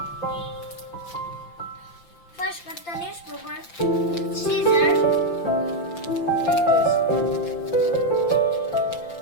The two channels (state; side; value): late; right; 5.8 ms